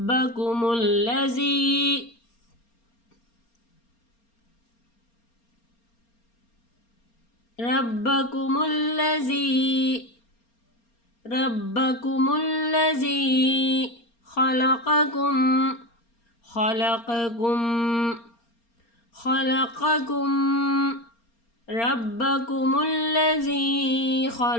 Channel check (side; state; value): right; late; 4.3 ms